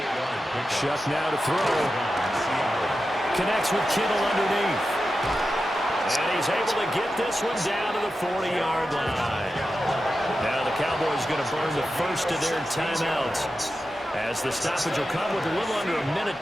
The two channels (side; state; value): both; normal; correlation 0.91